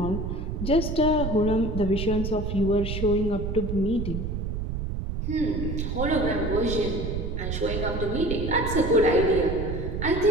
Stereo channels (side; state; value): right; noise; rumble, 3 dB below the sound